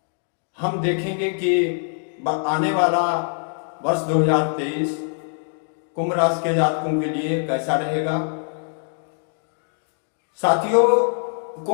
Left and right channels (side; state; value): right; silent; 62 dB below the other